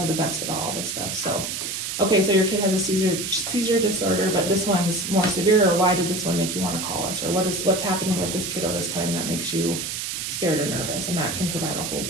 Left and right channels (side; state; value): right; noise; hiss, 4 dB below the sound